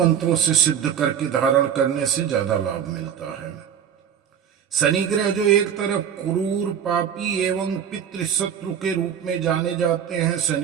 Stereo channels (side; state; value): left; quieter; 8.5 dB